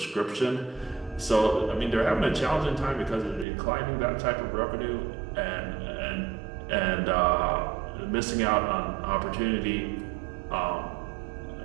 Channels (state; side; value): drops out; left; at 3.5 s